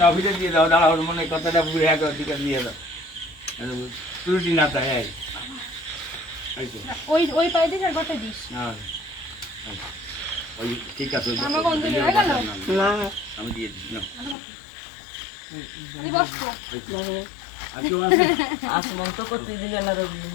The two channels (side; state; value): right; drops out; at 14.4 s